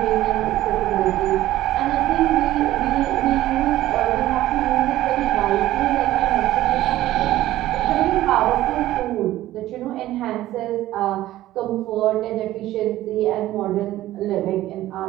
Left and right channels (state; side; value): quieter; left; 14.9 dB